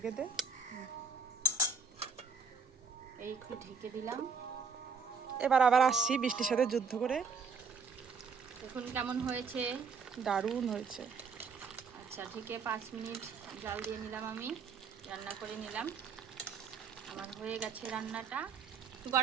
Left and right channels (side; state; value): left; quieter; 5.2 dB